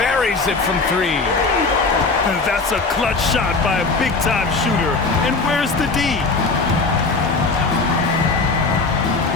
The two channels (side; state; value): right; quieter; 3.9 dB